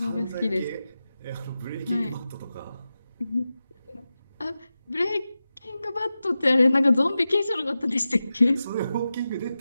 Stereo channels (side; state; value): both; inverted; correlation -0.93